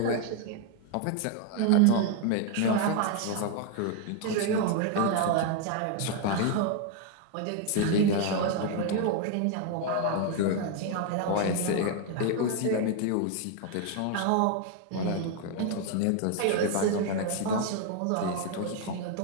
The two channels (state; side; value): different; both; correlation 0.01